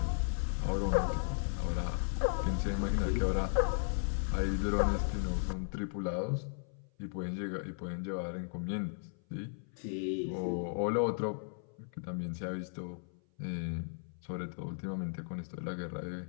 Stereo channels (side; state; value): right; silent; 54 dB below the other